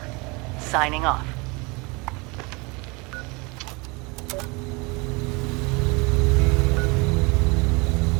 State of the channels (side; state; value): left; quieter; 27.5 dB